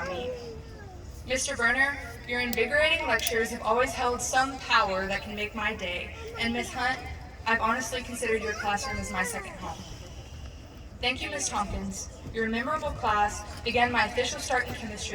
meet. Mr. Berner, your invigorating lectures have always held some power that can make my day. And Miss Hunt, I've honestly considered your classroom as my second home. Thank you, Ms. Tompkins. Your memorable class began my official start in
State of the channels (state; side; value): identical; both; correlation 1.00